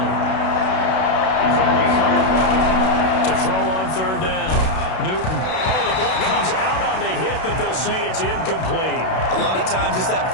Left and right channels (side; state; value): right; late; 32 ms